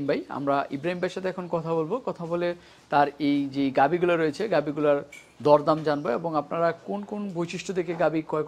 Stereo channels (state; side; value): identical; both; correlation 1.00